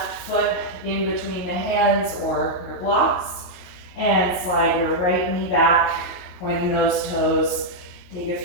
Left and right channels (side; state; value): right; late; 22 ms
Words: foot in between the hands or your blocks, and slide your right knee back, pointing those toes. Take a